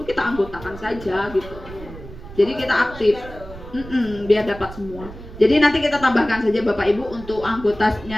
kita anggotakan saja gitu. Jadi kita aktif. Biar dapat semua. Jadi nanti kita tambahkan saja Bapak Ibu untuk anggotanya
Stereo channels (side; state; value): right; noise; rumble, 15 dB below the sound